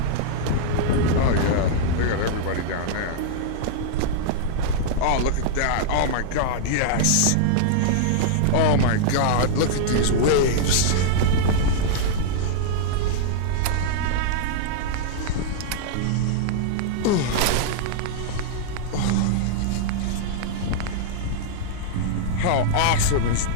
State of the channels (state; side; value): different; both; correlation -0.02